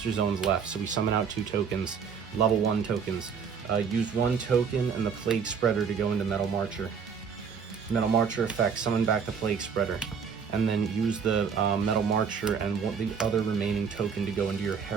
zones left, so we summon out 2 tokens, level 1 tokens. Use 1 token and the Plague Spreader to go into Metal Marcher. Metal Marcher effect, summon back the Plague Spreader. And then use the Metal Marcher and the other remaining token to go into your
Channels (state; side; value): quieter; left; 6.5 dB